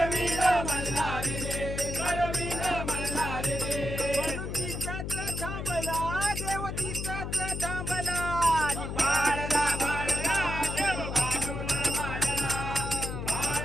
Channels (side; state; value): left; noise; hum, 5 dB below the sound